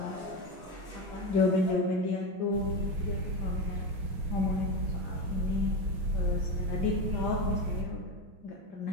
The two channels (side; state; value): left; late; 6.2 ms